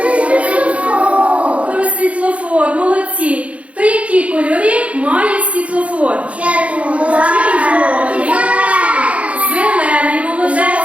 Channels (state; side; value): late; left; 0.064 ms